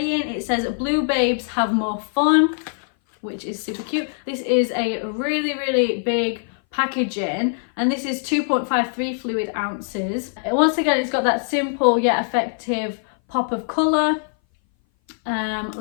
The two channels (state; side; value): silent; right; 59 dB below the other